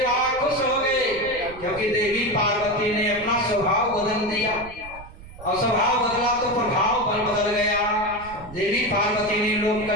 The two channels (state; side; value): noise; right; rumble, 17 dB below the sound